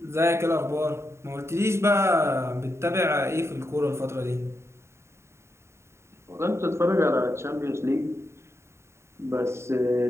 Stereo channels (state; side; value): late; left; 0.13 ms